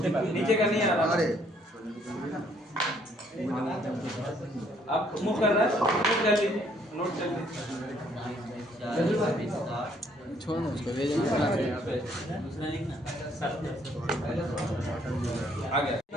नीचे का नहीं आ रहा। आप मूव कर रहा है, नोट कर लीजिए, नोट कर लीजिए। छोड़ो उसको, ले दूसरा लिखना। आ गया,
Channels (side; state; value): both; normal; correlation 0.65